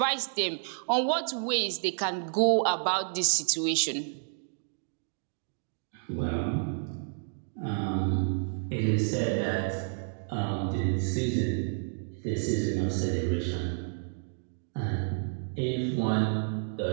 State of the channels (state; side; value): silent; left; digital silence